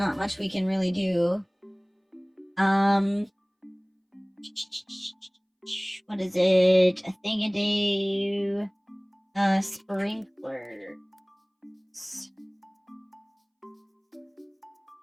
much we can really do. What is it? A thing-a-day sprinklers.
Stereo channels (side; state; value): both; identical; correlation 1.00